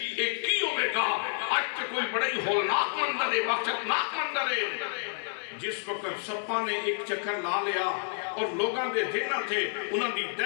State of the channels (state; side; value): silent; right; 58 dB below the other